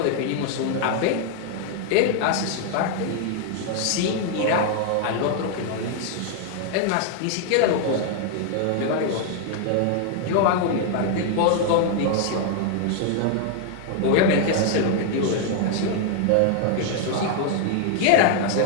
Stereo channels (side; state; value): both; different; correlation 0.00